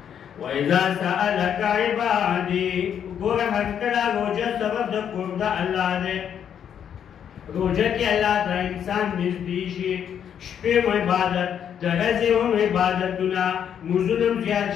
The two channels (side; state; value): right; quieter; 8.7 dB